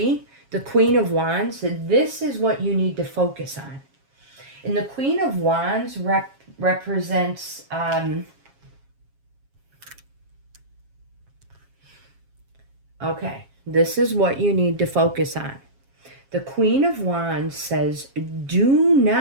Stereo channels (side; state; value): left; late; 7.4 ms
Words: the Queen of Wands. This is what you need to focus on. And the Queen of Wands represents... okay, this is what you need to focus on. The Queen of Wands says, do